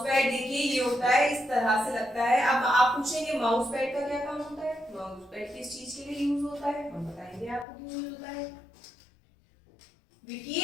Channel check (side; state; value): right; drops out; at 7.7 s